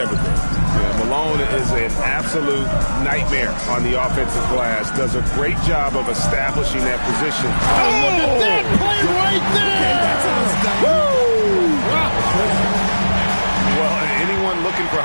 been. Yeah, Malone is an absolute nightmare on the offensive glass, does a great job of establishing that position. Oh, look at that play right there! Woo! Well, anyone looking for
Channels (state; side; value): inverted; both; correlation -1.00